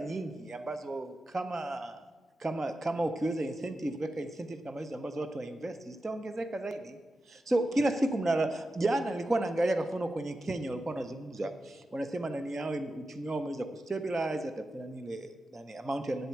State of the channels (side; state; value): both; normal; correlation 0.91